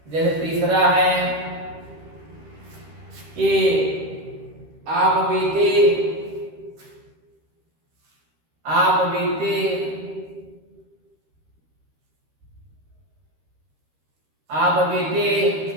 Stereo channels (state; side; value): late; left; 13 ms